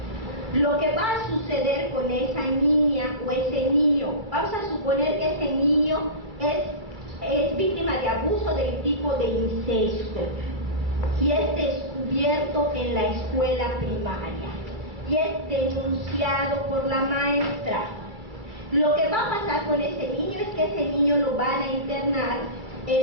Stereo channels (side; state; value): left; late; 2.3 ms